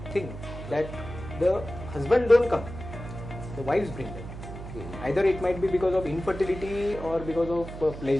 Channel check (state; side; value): noise; right; hum, 11 dB below the sound